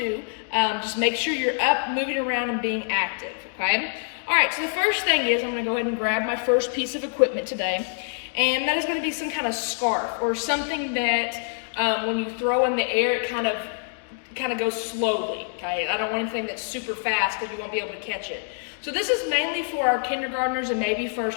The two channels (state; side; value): silent; right; digital silence